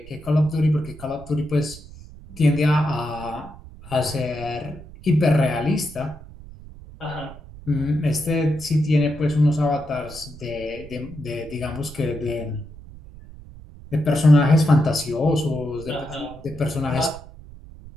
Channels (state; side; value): noise; right; rumble, 17 dB below the sound